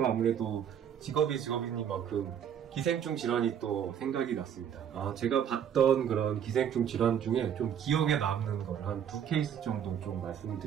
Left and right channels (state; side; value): quieter; left; 8.9 dB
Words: 아무래도 직업이니만큼 기생충 질환이 또 생각이 났습니다. 제가 봤던 그런 기생충 질환 중에 좀 기억에 남는 걸 한 2케이스 정도 좀